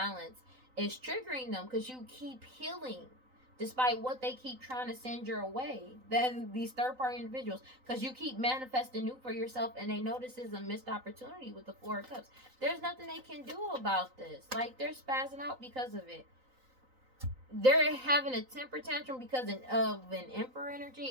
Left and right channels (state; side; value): late; left; 3.9 ms